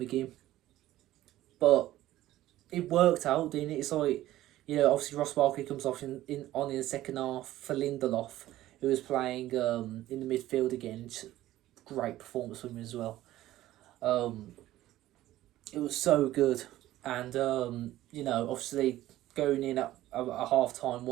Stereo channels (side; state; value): left; quieter; 14.9 dB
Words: But it worked out, didn't it? It's like, obviously Ross Barkley comes off in the second half for Lindelof, who was playing in the midfield again. Great performance from him as well. It was so good. And, obviously going in at half time,